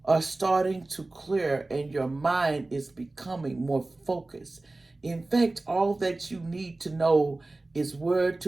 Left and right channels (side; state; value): left; quieter; 3.0 dB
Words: are starting to clear, and your mind is becoming more focused. In fact, all that you need to know is where